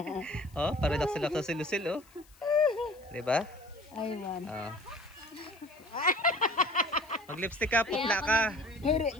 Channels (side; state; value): left; noise; hiss, 28 dB below the sound